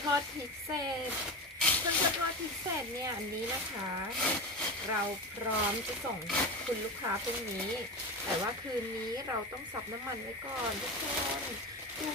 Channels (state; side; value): normal; both; correlation 0.23